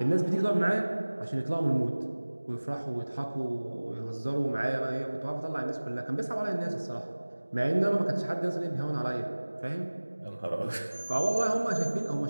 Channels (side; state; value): both; inverted; correlation -1.00